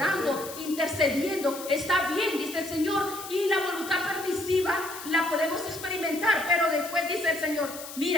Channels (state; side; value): noise; left; hiss, 12 dB below the sound